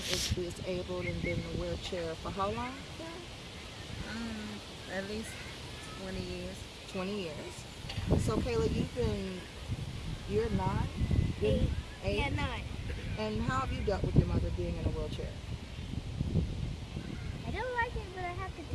disabled and been in a wheelchair for how long, Karen? At least 20 years. 20 years. So Kayla, you're 9? Eight. 8? Yeah, 9. And how have you dealt with your mother being in a wheelchair? I don't like it, but I have to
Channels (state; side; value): identical; both; correlation 1.00